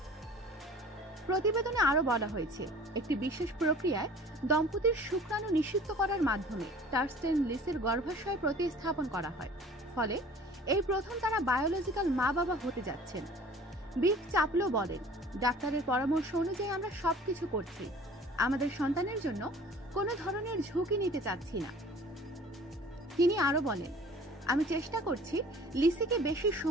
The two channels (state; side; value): normal; both; correlation 0.47